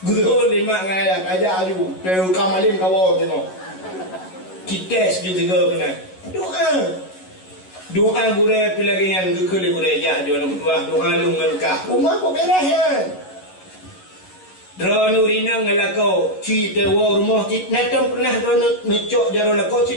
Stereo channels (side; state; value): right; late; 11 ms